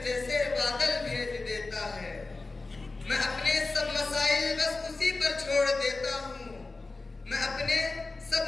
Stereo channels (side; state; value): right; quieter; 3.5 dB